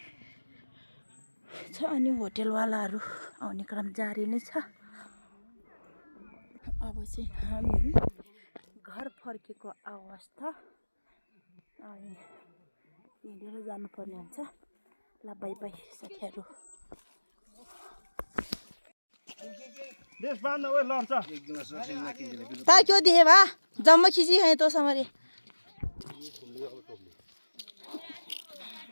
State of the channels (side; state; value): both; inverted; correlation -1.00